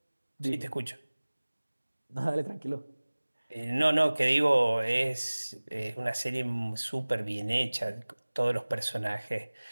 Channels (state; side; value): inverted; both; correlation -1.00